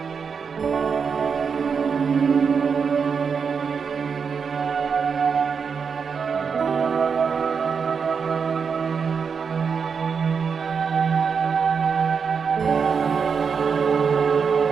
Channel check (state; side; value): quieter; left; 6.0 dB